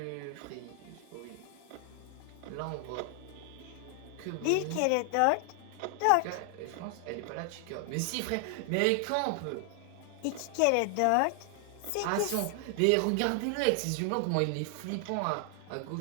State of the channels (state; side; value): different; both; correlation 0.00